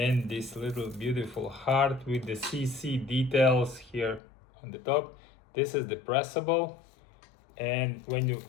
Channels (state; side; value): drops out; right; at 4.2 s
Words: this little beautiful heart with the CC details here on the top. This is the pressable, and when you